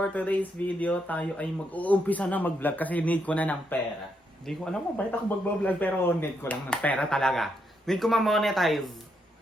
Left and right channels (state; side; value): normal; both; correlation 0.78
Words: today's video, tayo ay mag-uumpisa na mag-vlog kasi need ko na ng pera. Hindi ko alam kung bakit ako mag-vlog pero need ko lang ng pera talaga. Need ko ma-monetize.